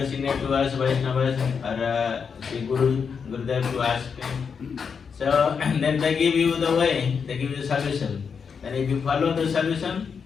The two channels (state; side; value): quieter; right; 6.2 dB